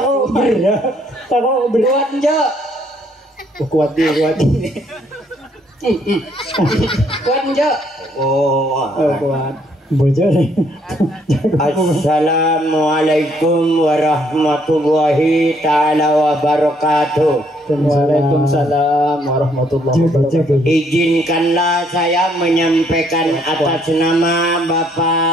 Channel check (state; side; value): normal; both; correlation 0.68